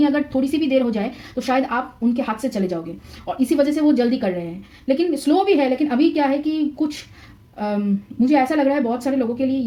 अगर थोड़ी सी भी देर हो जाए तो शायद आप उनके हाथ से चले जाओगे और इसी वजह से वो जल्दी कर रहे हैं, लेकिन स्लो भी है। लेकिन अभी क्या है कि कुछ मुझे ऐसा लग रहा है बहुत सारे लोगों के लिए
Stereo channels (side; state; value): both; identical; correlation 1.00